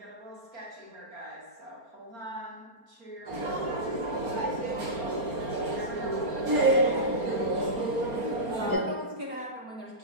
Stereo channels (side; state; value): left; late; 4.3 ms